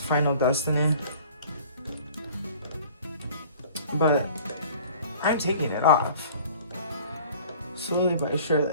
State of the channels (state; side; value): inverted; both; correlation -0.48